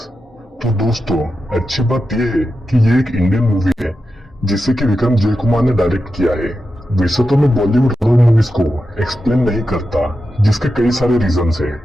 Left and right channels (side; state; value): both; normal; correlation 0.90